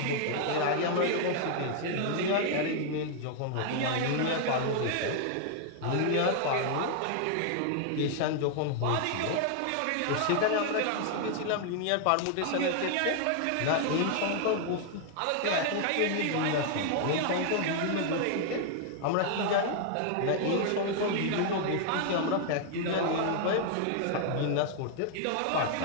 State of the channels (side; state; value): both; different; correlation 0.00